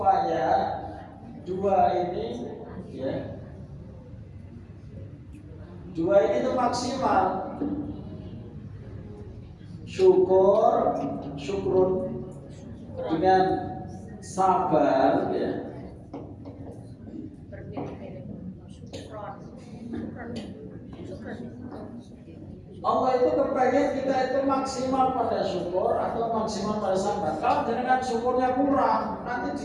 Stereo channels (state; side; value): identical; both; correlation 1.00